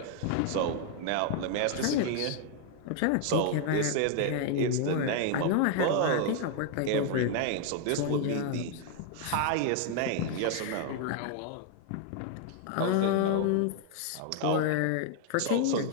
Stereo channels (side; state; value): both; different; correlation 0.00